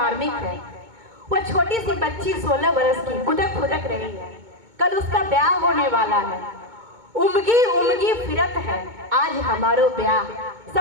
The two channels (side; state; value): left; late; 2.2 ms